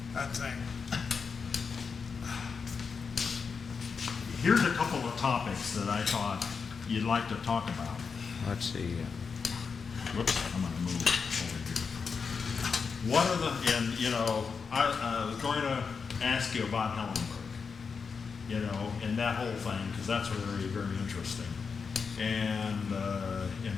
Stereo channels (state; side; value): quieter; right; 5.5 dB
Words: That thing. Here's a couple of topics that I thought you'd like to talk about. Let's see. whoops, I'm gonna move over here. What are the, and, you know, I was going to ask you about Hellenberg, you know, and that whole thing, because that's very, very interesting. And